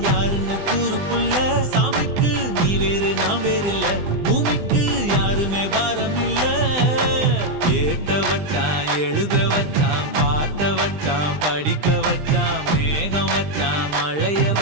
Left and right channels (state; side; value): late; left; 20 ms